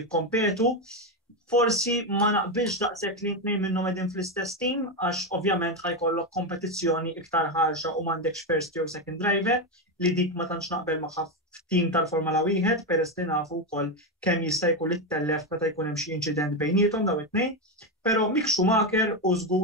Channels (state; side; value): normal; both; correlation 0.10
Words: jikkompetu. Forsi ma naqbilx daqshekk li tnejn minnhom qegħdin fl-istess team għax ovvjament ħajkollok kompetizzjoni iktar ħarxa u m'għandekx first jew second driver li dik ma tantx naqbel magħha f'team tal-Formula 1 peress li nafu wkoll kemm jista' jkun ittellef meta jkun hemm xi inċident bejniethom daw it-tnejn. Però Mick Schumacher u